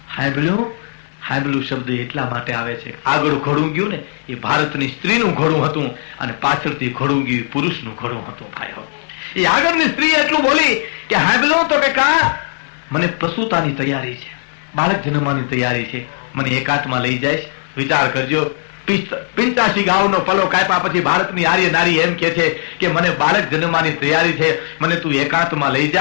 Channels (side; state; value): right; silent; 68 dB below the other